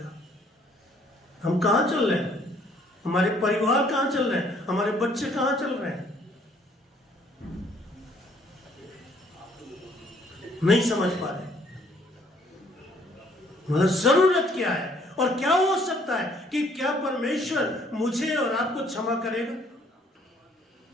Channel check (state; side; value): normal; both; correlation 0.63